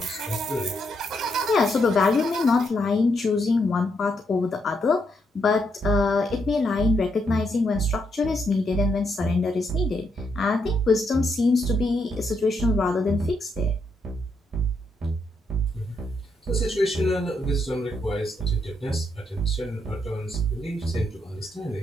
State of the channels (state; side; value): normal; both; correlation 0.78